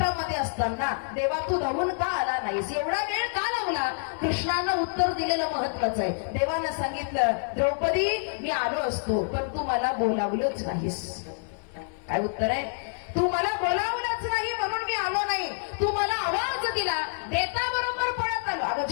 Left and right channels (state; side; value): silent; right; digital silence